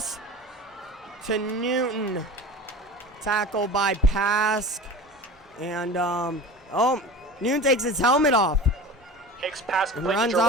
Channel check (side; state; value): both; normal; correlation 0.35